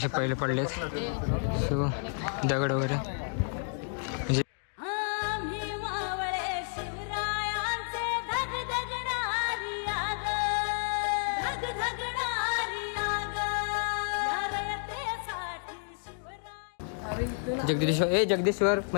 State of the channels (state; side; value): silent; right; 57 dB below the other